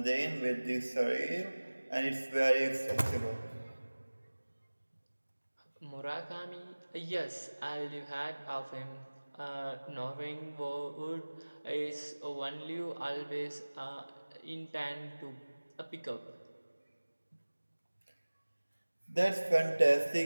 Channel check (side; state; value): both; inverted; correlation -1.00